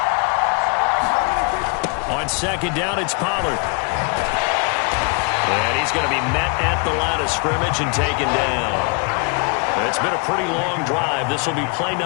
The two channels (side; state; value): right; quieter; 35.7 dB